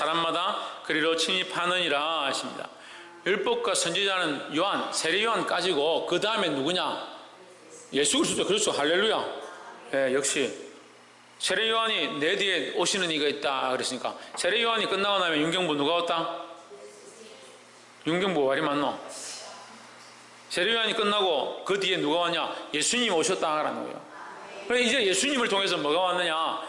그리로 침입하느니라 하십니다. 율법과 선지자는 요한, 세례 요한까지고 그 다음에 누구냐? 예수 그리스도. 그렇죠. 할렐루야. 예, 역시 세례 요한이 내 뒤에 오시는 이가 있다 그랬으니까, 세례 요한이 끝나고 나면 윤경부 누가 왔다? 윤경부 말이 맞노? 세례 요한이 끝나고 그 뒤에 누가 왔냐? 예수님이 오셨다라는 거예요. 그래, 이제 예수님을 통해서 뭐가 왔느냐?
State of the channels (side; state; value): both; identical; correlation 1.00